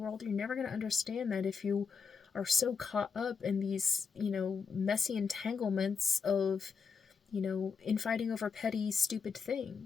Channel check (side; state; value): right; quieter; 5.6 dB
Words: You're never going to understand that if you are so caught up in these, messy entanglements of, infighting over petty, stupid